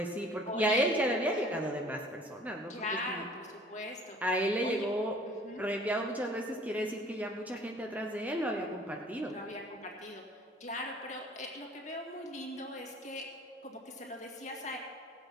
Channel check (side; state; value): both; normal; correlation 0.52